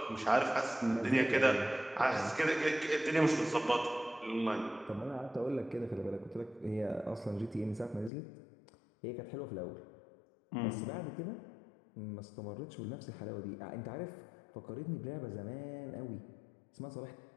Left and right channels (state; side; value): drops out; right; at 8.1 s